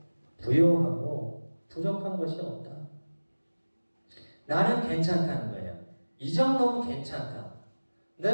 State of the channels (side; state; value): both; inverted; correlation -1.00